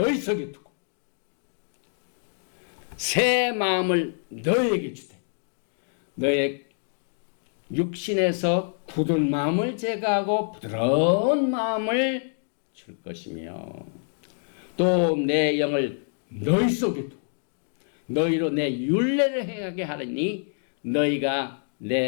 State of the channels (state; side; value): silent; right; digital silence